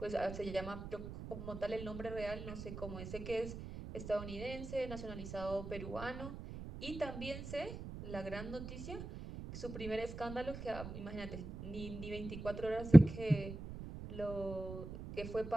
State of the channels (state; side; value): noise; right; rumble, 10 dB below the sound